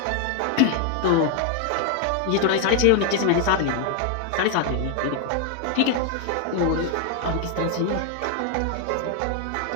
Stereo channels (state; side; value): different; both; correlation 0.00